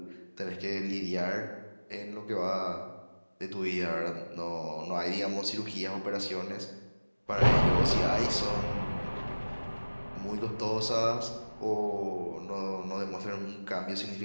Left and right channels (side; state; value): both; inverted; correlation -1.00